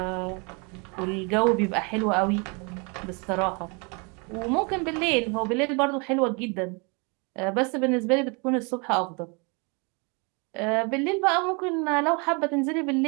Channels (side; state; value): left; quieter; 32.1 dB